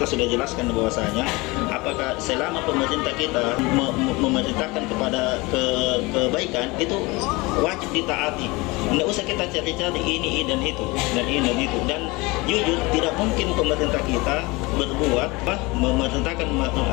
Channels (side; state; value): right; quieter; 23.9 dB